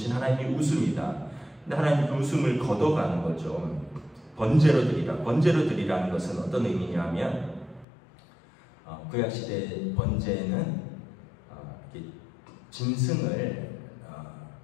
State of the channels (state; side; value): drops out; right; at 7.9 s